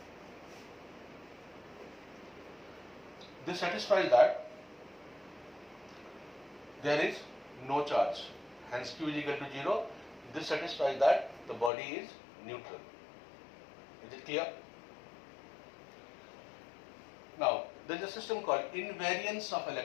This satisfies that there is no charge, hence Q is equal to 0. This satisfies that the body is neutral. Is it clear? Now, there is a system called invariance of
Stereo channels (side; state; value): right; drops out; at 11.7 s